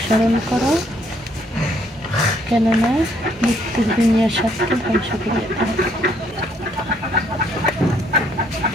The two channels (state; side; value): normal; both; correlation 0.67